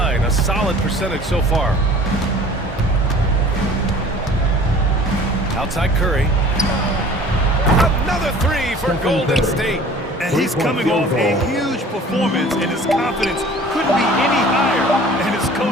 a solid percentage so far. Outside Curry. Another three for Golden State. And he's coming off a huge performance, and his confidence couldn't be any higher. And his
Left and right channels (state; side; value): normal; both; correlation 0.47